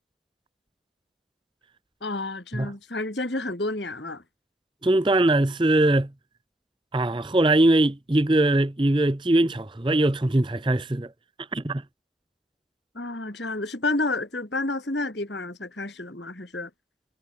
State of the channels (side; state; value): both; normal; correlation 0.71